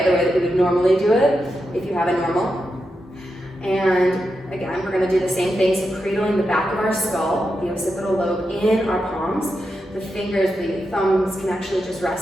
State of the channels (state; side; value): normal; both; correlation 0.87